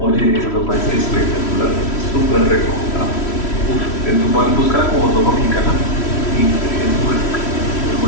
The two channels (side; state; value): right; late; 3.1 ms